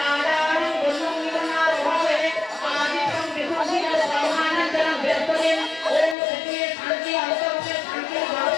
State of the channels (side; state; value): right; drops out; at 6.2 s